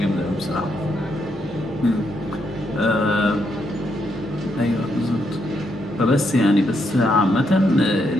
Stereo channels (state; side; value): normal; both; correlation 0.78